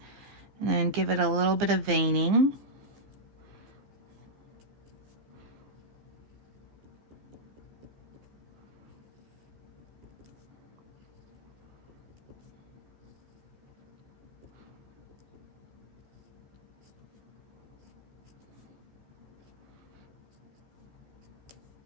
and then give it a little bit of veining.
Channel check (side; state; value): left; late; 15 ms